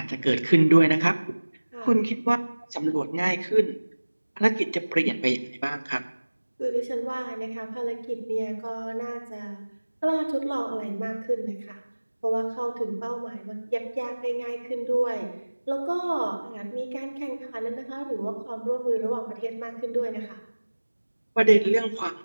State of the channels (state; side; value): inverted; both; correlation -1.00